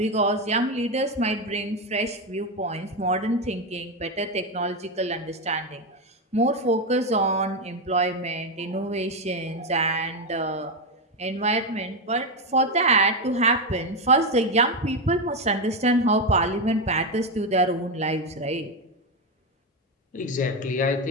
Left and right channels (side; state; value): both; normal; correlation 0.10